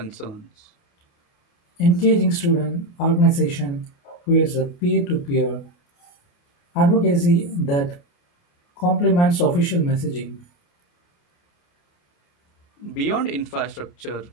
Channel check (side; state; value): right; late; 29 ms